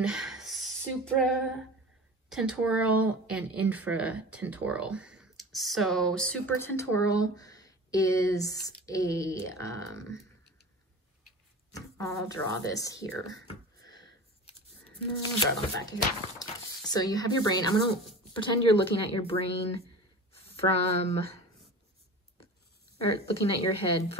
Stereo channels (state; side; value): normal; both; correlation 0.35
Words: supratentorial and infratentorial. So supratentorial is I'll draw this here. No, I'll draw it on the back of here. So you have your brain. I'm gonna pretend you're looking at your brain looking at your head